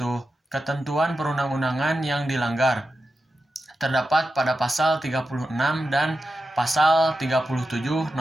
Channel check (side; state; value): both; normal; correlation 0.90